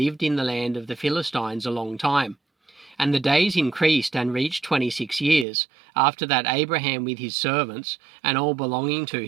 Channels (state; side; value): drops out; left; at 5.5 s